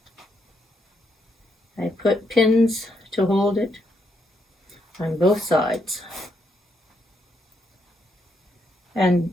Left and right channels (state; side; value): normal; both; correlation 0.77